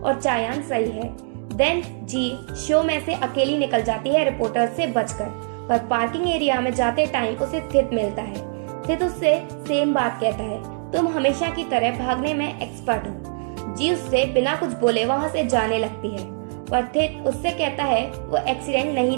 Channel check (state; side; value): silent; left; digital silence